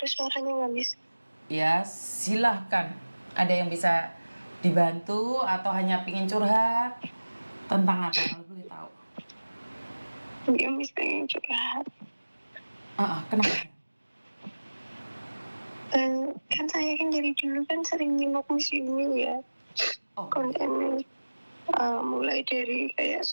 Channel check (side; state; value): both; inverted; correlation -1.00